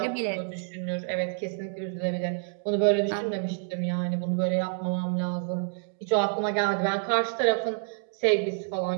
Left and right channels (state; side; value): silent; left; digital silence